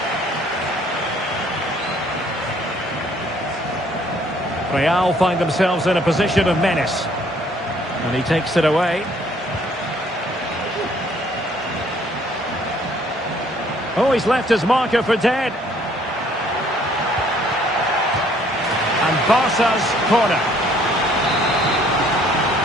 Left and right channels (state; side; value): normal; both; correlation 0.61